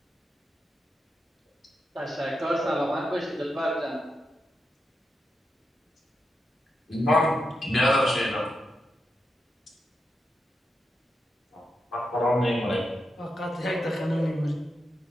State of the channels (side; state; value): both; normal; correlation 0.86